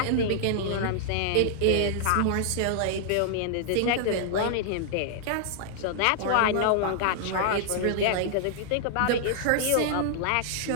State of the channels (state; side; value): different; both; correlation -0.01